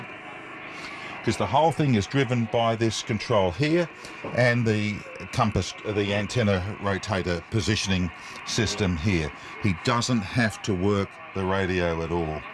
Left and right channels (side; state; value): both; identical; correlation 1.00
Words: because the whole thing is driven by this control here and the compass, the antenna rotator positioning system here. He doesn't have to work the radio at all.